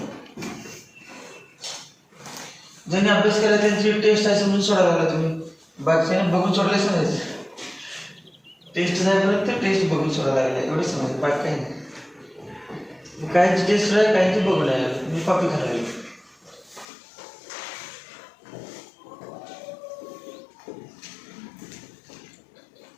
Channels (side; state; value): right; drops out; at 16.9 s